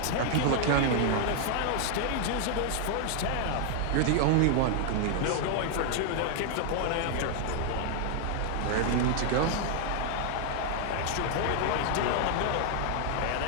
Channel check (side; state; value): both; different; correlation 0.00